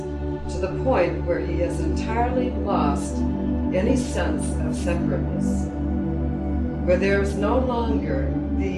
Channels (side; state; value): both; identical; correlation 1.00